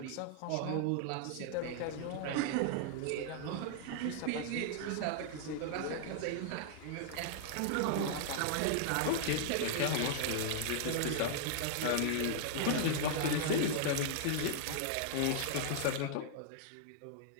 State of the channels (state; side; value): different; both; correlation -0.01